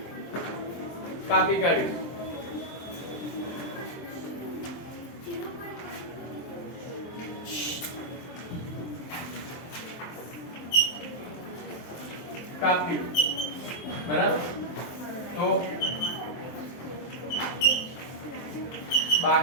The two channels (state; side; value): late; right; 23 ms